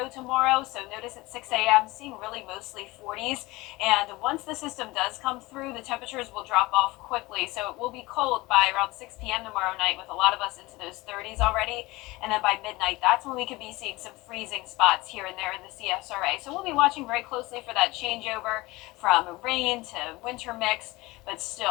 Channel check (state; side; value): quieter; right; 21.3 dB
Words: tomorrow, so notice at 6 a.m. seeing really mostly 40s, and once the system does come through, the temperatures will drop off quickly, so it will be cold by around 6 p.m. tomorrow night, with a lot of us into those 30s already, and then by midnight, that's when we could be seeing some freezing spots here and there in the CSRA. So we'll be watching very closely for that changeover from rain to winter mix, but